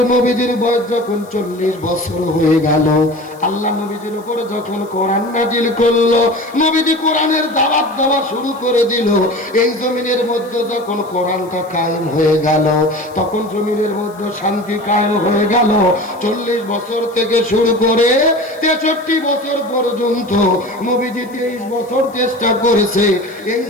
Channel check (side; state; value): left; noise; hiss, 26 dB below the sound